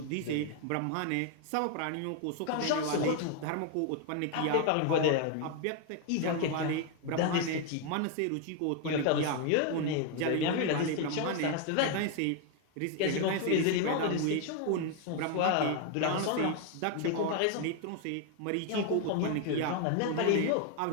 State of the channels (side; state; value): both; different; correlation 0.01